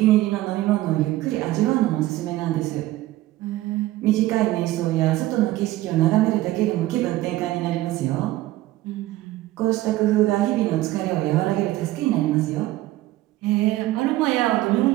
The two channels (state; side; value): quieter; left; 16.3 dB